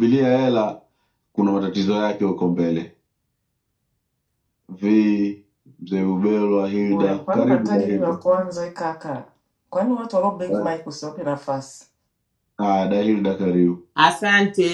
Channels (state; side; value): identical; both; correlation 1.00